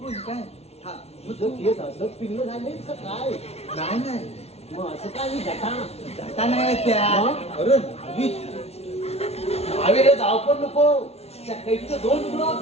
काय. हा मग जर केस असं पिल्लं झाले तर काय. नाही नाही मग असं काय मी जटा जाता नाही त्या. मग? अरे नावीच. हवे रे जाऊ पण नको. त्या कैकीचं 2 तुकडं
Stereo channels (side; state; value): right; late; 0.31 ms